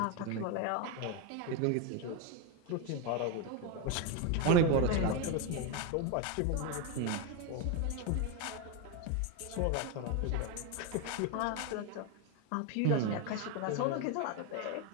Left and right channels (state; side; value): different; both; correlation 0.02